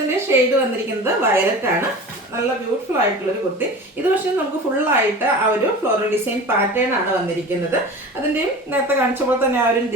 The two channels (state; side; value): normal; both; correlation 0.36